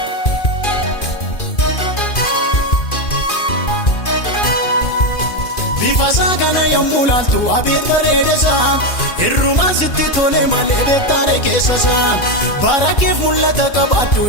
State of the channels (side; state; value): right; late; 2.5 ms